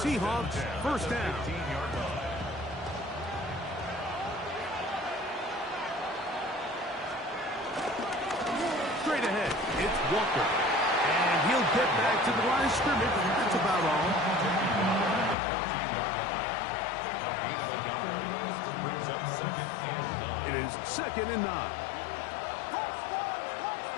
first down. Straight ahead, it's Walker. And he'll get back to the line of scrimmage. That's about all. It is second and 9.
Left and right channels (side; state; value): right; drops out; at 15.4 s